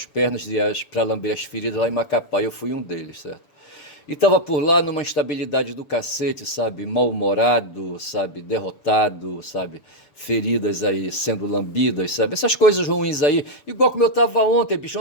pernas para lamber as feridas lá em Macapá. Eu fui um deles, certo? E estava por lá numa instabilidade do cacete, sabe? Mal-humorado, sabe? Derrotado, sabe? Feridas aí sendo lambidas, sabe? Essas coisas ruins aí. Igual como eu estava ontem, bicho.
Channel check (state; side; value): late; right; 6.7 ms